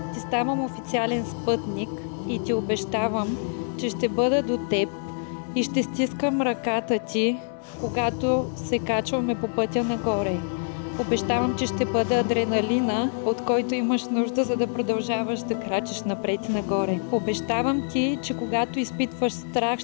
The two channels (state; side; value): silent; right; 61 dB below the other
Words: ти ставам официален спътник и ти обещавам, че ще бъда до теб и ще стискам ръката ти, когато се качваме по пътя нагоре. Обещавам, че ще бъда адреналина, от който имаш нужда, за да продължаваш да крачиш напред и нагоре. Обещавам ти, че когато изпитваш страх,